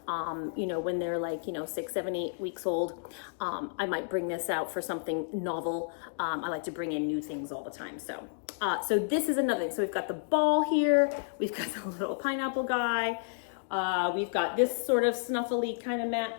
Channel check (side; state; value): right; silent; digital silence